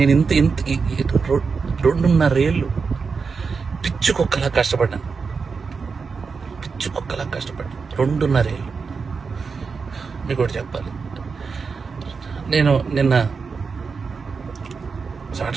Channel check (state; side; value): quieter; left; 5.1 dB